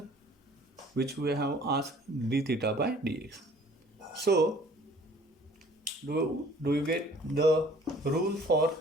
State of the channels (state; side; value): normal; both; correlation 0.54